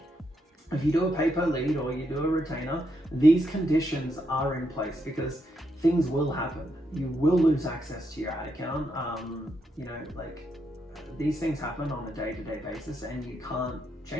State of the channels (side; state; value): both; normal; correlation 0.80